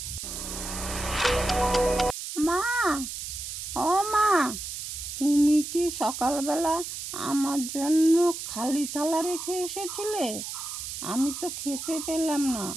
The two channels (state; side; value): noise; right; hiss, 7 dB below the sound